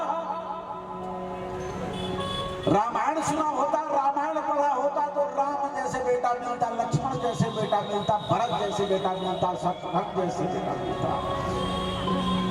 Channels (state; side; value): identical; both; correlation 1.00